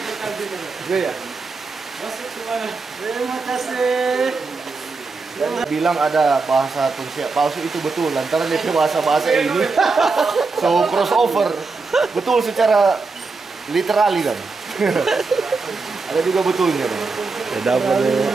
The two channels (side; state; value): left; quieter; 4.1 dB